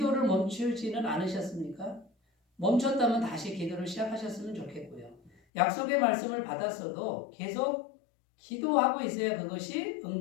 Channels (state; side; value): drops out; right; at 5.3 s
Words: 멈추지는 않으셨습니까? 멈췄다면 다시 기도를 시작하셨으면 좋겠고요. 약속의 말씀을 받았어도 계속 기도하고 있어야 그것이